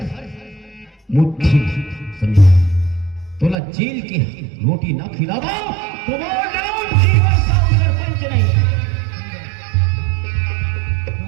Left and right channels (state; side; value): drops out; left; at 3.6 s